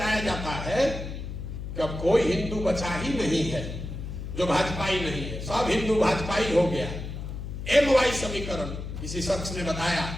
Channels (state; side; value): noise; left; hum, 7 dB below the sound